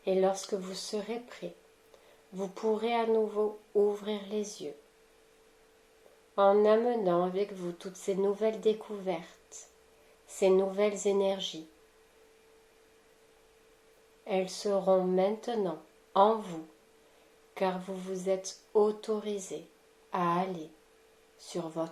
Et lorsque vous serez prêt, vous pourrez à nouveau ouvrir les yeux, en amenant avec vous toutes ces nouvelles découvertes, ces nouvelles énergies. Elles seront maintenant en vous, car vous vous êtes autorisé à aller sur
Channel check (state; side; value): identical; both; correlation 1.00